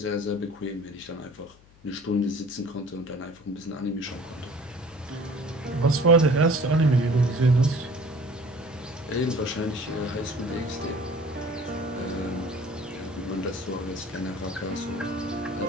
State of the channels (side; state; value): left; noise; hum, 26 dB below the sound